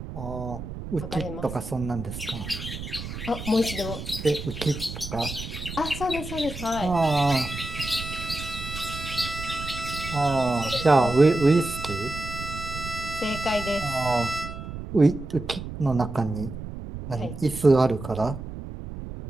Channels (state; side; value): noise; right; rumble, 9 dB below the sound